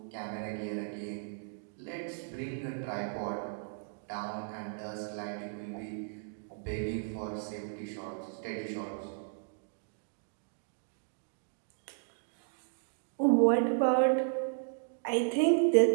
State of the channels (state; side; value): silent; left; digital silence